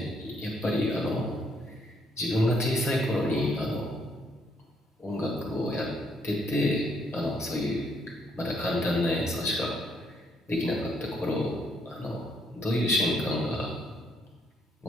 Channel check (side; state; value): both; normal; correlation 0.71